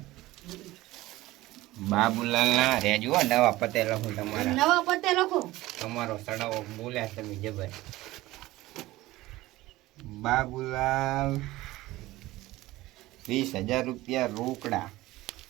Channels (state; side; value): quieter; left; 17.9 dB